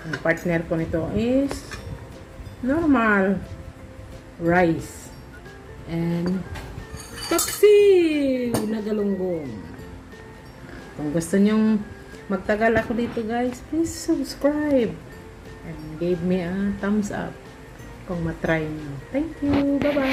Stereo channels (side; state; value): both; identical; correlation 1.00